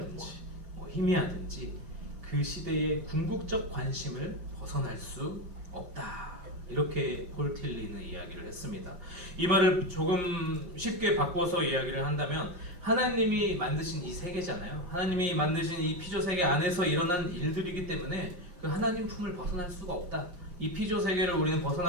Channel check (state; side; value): late; left; 5.6 ms